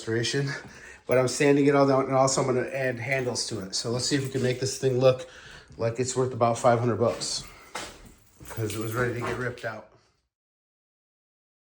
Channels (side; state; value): both; identical; correlation 1.00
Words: But I'm sanding it all down, and also I'm gonna add handles to it. So let's see if we can make this thing look like it's worth about 500 bucks because it was ready to get ripped out.